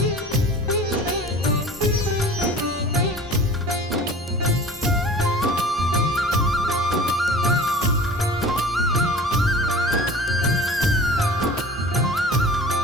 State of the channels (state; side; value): normal; both; correlation 0.42